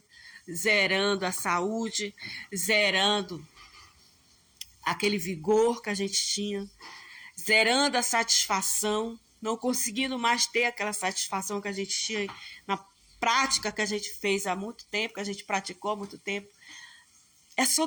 zerando a saúde, zerando aquele vigor que a gente tinha, zerando a satisfação, não conseguindo mais ter aquela satisfação que a gente tinha na prática que a gente fez há muito tempo, que a gente praticou há muito tempo. É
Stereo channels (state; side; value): identical; both; correlation 1.00